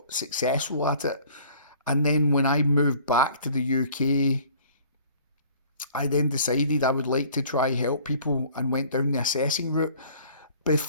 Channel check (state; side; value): inverted; both; correlation -0.53